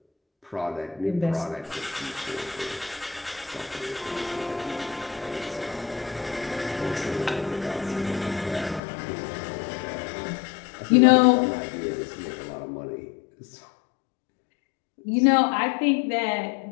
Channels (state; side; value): drops out; right; at 8.8 s